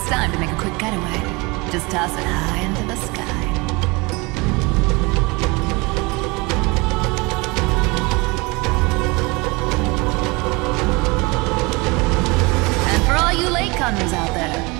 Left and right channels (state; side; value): quieter; left; 25.9 dB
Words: time to make a quick getaway, just toss it high into the sky. You latecomers out there,